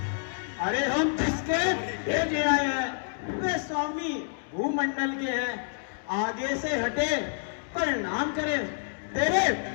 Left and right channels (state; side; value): silent; right; digital silence